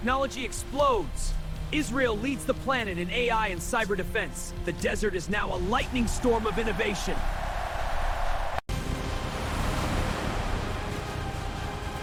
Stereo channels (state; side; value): identical; both; correlation 1.00